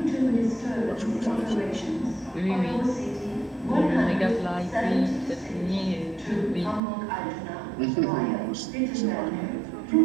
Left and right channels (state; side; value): drops out; left; at 6.8 s